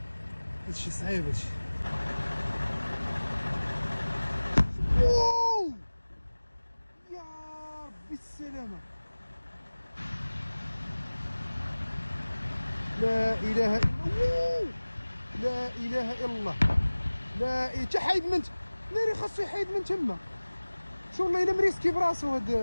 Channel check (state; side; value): inverted; both; correlation -1.00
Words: هادشي صعيب هادشي. واو يا ربي السلامة. لا اله الا الله. لا اله الا الله. لا تا حايد من ناري خاصو يحيد من تما. شو والله الا مريسكي براسو هاد